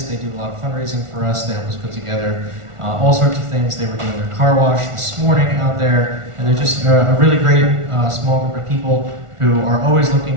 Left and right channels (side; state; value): left; late; 1.4 ms